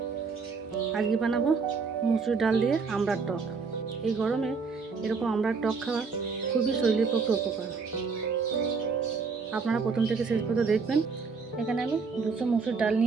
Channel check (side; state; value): left; quieter; 4.9 dB